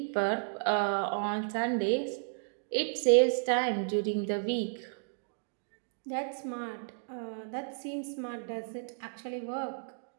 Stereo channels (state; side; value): silent; left; digital silence